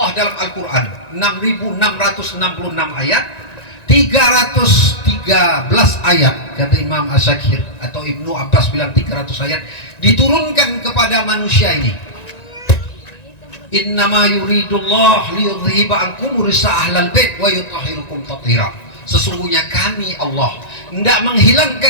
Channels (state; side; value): late; right; 1.9 ms